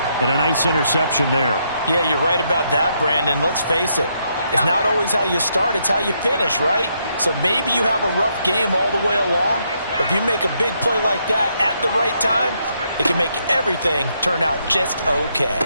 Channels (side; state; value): both; inverted; correlation -0.76